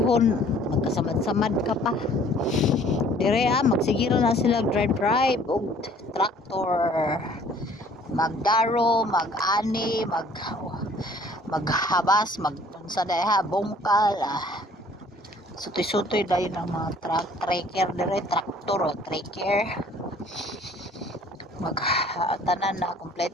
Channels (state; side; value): normal; both; correlation 0.56